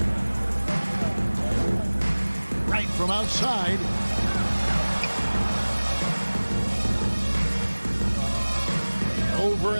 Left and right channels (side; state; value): both; inverted; correlation -1.00